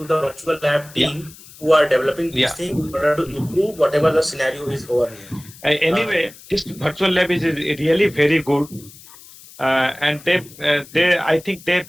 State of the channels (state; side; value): noise; left; hiss, 21 dB below the sound